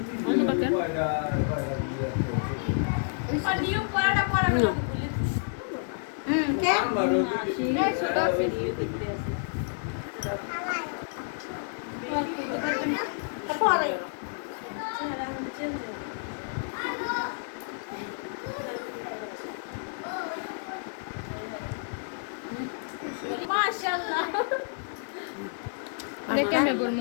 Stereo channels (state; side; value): silent; right; digital silence